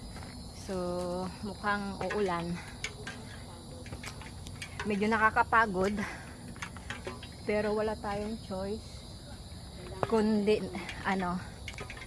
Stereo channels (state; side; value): identical; both; correlation 1.00